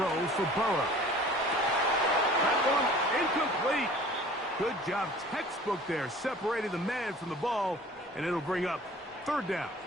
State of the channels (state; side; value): normal; both; correlation 0.46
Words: for Burrow. That one incomplete. Good job, textbook there, separating the man from the ball, and it'll bring up third down.